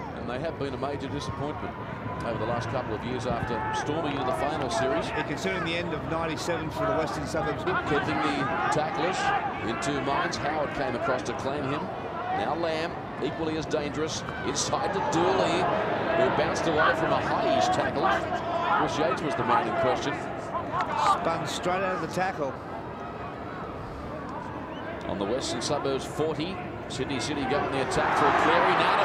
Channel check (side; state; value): both; identical; correlation 1.00